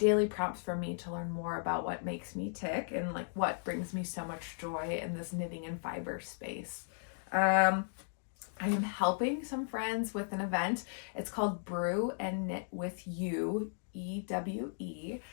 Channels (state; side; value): silent; right; digital silence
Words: prompts for me to learn more about what makes me tick and like what brings me so much joy in this knitting and fiber space. I am helping some friends with an event. It's called Brew and Knit with You, EWE.